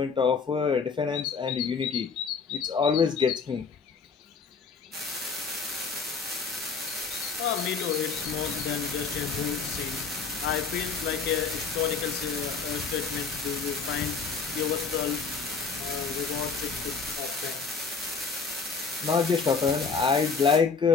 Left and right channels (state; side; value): quieter; right; 5.1 dB